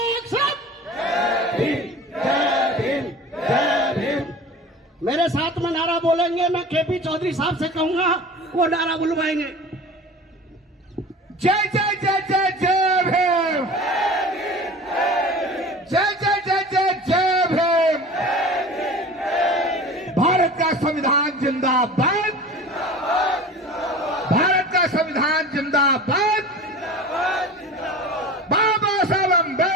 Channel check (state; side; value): normal; both; correlation 0.38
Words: सैल्यूट, जय भीम जय भीम जय भीम। मेरे साथ में नारा बोलेंगे। मैं केपी चौधरी साहब से कहूंगा, वो नारा बुलवाएंगे। जय जय जय जय जय भीम, जय जय जय जय जय भीम। भारत का संविधान जिंदाबाद, भारत का संविधान जिंदाबाद। बाबा साहब